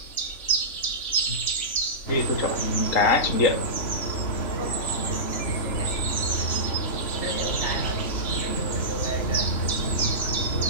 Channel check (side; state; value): right; late; 3.6 ms